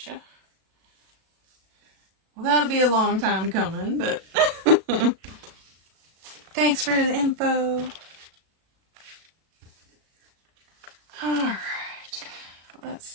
Well, that'll be a long time coming, but thanks for the info. Alright, let's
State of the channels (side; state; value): left; late; 37 ms